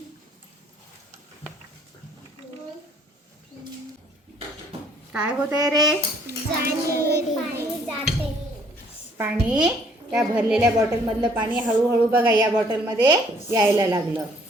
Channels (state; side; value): normal; both; correlation 0.62